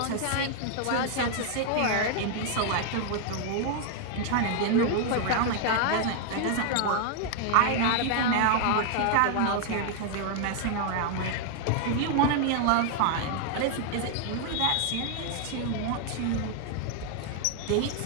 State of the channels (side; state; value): both; different; correlation 0.00